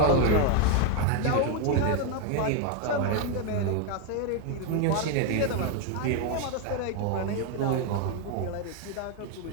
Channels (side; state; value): both; different; correlation 0.01